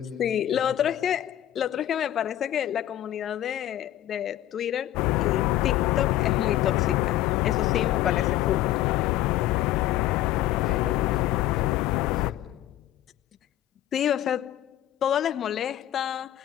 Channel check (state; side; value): quieter; right; 13.1 dB